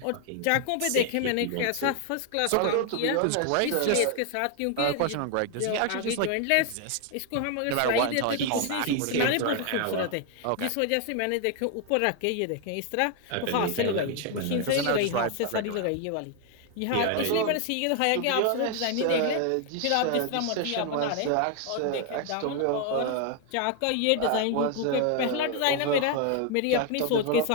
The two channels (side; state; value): both; different; correlation 0.00